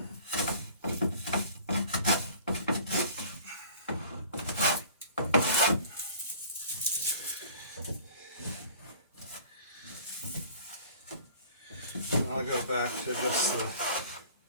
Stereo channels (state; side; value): inverted; both; correlation -0.48